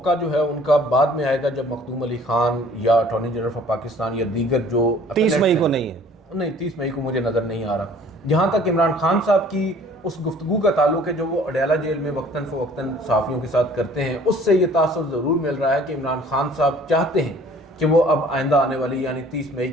جو ہے ان کا بعد میں آئے گا، جب مخدوم علی خان یا اٹارنی جنرل آف پاکستان یا دیگر جو 30 مئی کو نہیں ہے، نہیں 30 مئی کو مجھے نظر نہیں آ رہا۔ جہاں تک عمران خان صاحب کی اس گفتگو کا تعلق ہے جو وہ اڈیالہ جیل میں وقتاً فوقتاً صحافیوں کے ساتھ کرتے ہیں، اس سے یہ تاثر ضرور مل رہا ہے کہ عمران خان صاحب چاہتے ہیں کہ وہ اب آئندہ آنے والی یعنی 30 مئی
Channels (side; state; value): both; normal; correlation 0.53